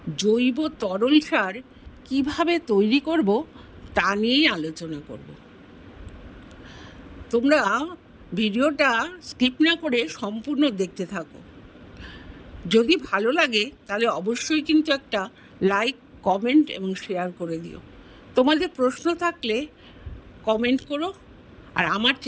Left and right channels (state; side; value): identical; both; correlation 1.00